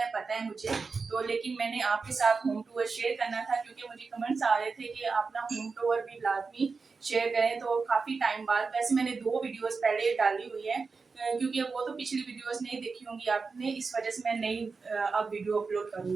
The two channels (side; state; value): left; quieter; 4.6 dB